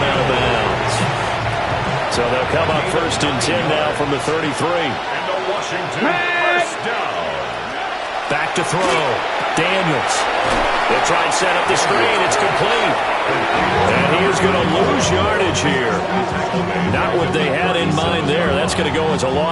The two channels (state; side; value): identical; both; correlation 1.00